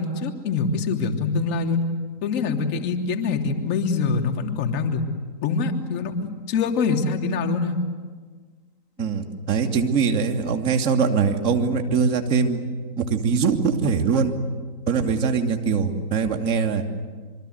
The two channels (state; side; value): late; right; 3.9 ms